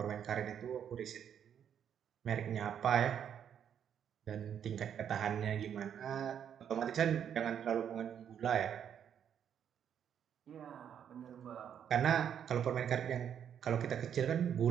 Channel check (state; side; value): quieter; left; 8.8 dB